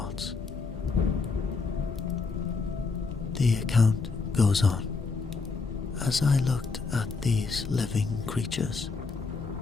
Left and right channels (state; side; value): quieter; right; 4.4 dB